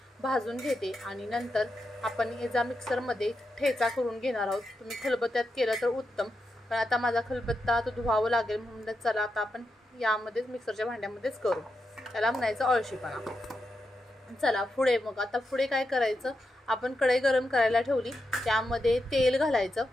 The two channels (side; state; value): both; normal; correlation 0.86